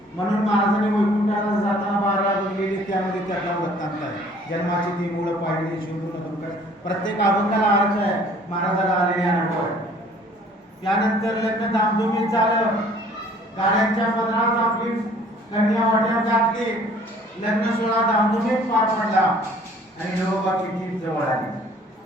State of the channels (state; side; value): normal; both; correlation 0.55